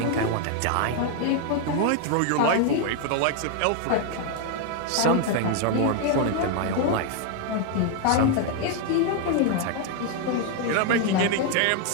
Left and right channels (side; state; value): both; different; correlation 0.00